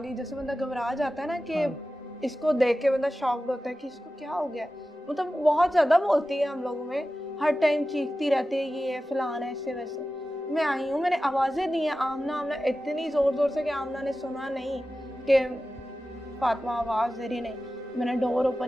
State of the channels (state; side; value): normal; both; correlation 0.94